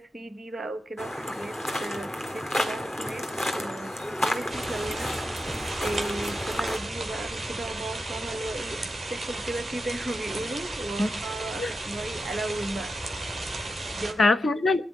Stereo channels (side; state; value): both; normal; correlation 0.88